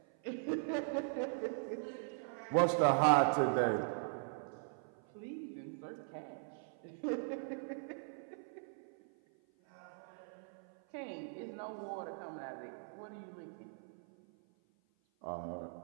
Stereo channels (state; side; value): silent; left; 51 dB below the other